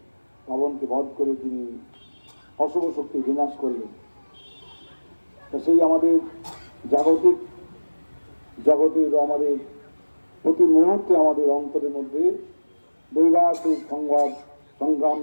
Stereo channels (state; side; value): inverted; both; correlation -1.00